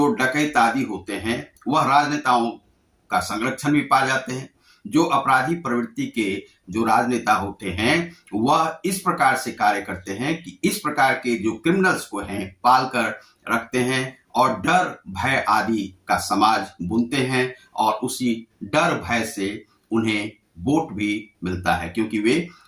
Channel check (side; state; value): both; identical; correlation 1.00